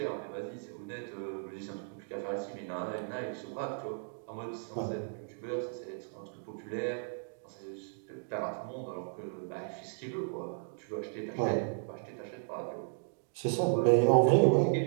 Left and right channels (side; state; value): left; silent; digital silence